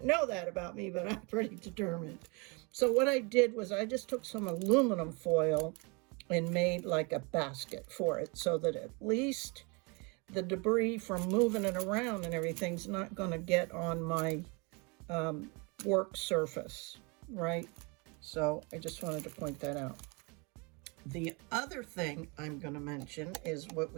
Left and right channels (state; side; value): quieter; left; 30.1 dB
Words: know that about me, but I'm pretty determined. So what I did was I just took some aluminum foil and made like a basket for it, so that at least the debris from moving it around and everything's not going to get on my work surface, right? So I just wanted to point that out. The other thing I'm going to mention is what